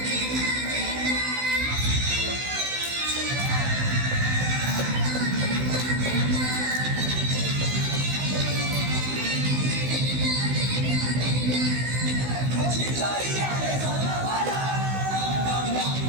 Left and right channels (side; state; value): left; late; 16 ms